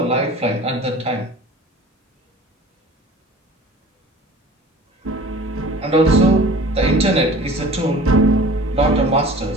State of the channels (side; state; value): both; normal; correlation 0.43